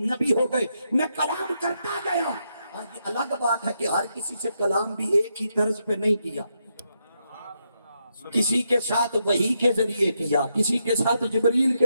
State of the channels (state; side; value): inverted; both; correlation -0.81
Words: نبی ہو گئے۔ میں کلام کرتا گیا۔ یہ الگ بات ہے کہ ہر کسی سے کلام بھی ایک ہی طرز پہ نہیں کیا، کسی کے ساتھ وحی کے ذریعے کیا، کسی کے ساتھ جبریل